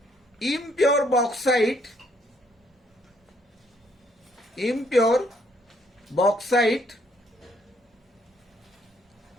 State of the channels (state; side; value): normal; both; correlation 0.69